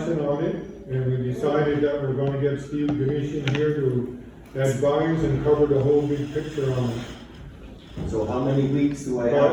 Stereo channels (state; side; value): identical; both; correlation 1.00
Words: on it, and we decided that we're gonna get Steve Ganeshan here to advise and cover the whole big picture on it. So how many weeks do I